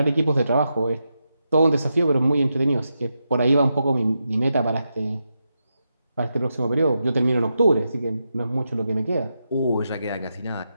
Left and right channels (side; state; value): both; inverted; correlation -0.86